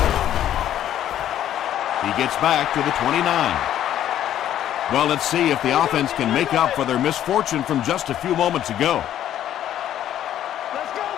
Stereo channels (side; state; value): right; quieter; 11.4 dB